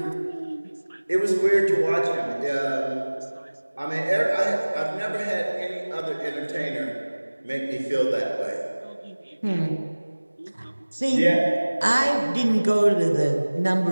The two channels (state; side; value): inverted; both; correlation -1.00